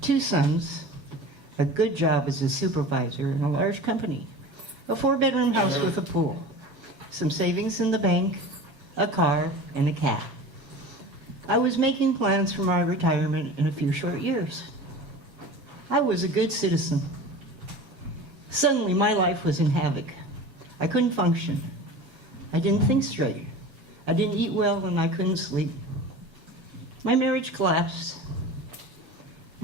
2 sons, a good job as a supervisor in a large company. a 4-bedroom house with a pool, some savings in the bank, a car, and a cat. I was making plans for my retirement in a few short years. I was a good citizen. Suddenly, my life was in havoc. I couldn't function. I didn't think straight. I didn't eat well, and I couldn't sleep. My marriage collapsed.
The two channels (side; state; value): left; late; 7.5 ms